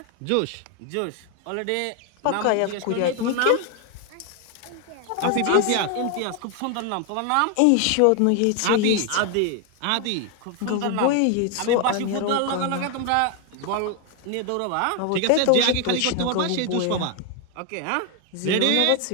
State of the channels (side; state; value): both; different; correlation 0.01